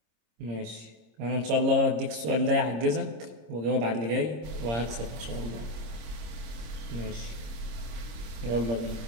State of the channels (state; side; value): late; left; 26 ms